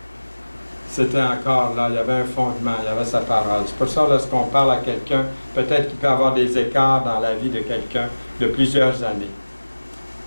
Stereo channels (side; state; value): both; inverted; correlation -1.00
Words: c'était encore là, il y avait un fondement, il y avait sa parole. C'est pour ça, lorsqu'on parle à quelqu'un, peut-être qu'il peut y avoir des écarts dans la vie de quelqu'un de plusieurs années.